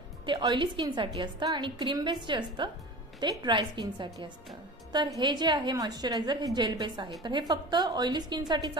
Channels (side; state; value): both; normal; correlation 0.35